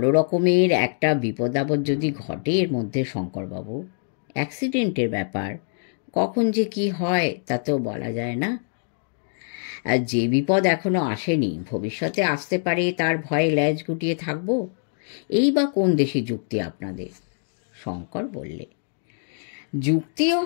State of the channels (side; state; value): right; silent; digital silence